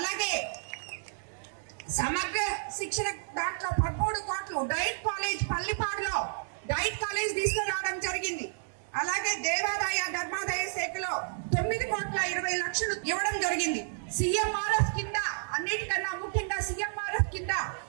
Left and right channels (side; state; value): left; silent; 57 dB below the other